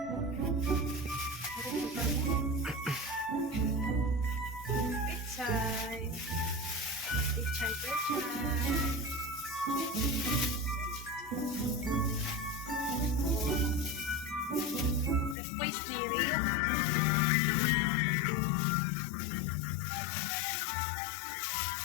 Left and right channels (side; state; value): right; drops out; at 15.4 s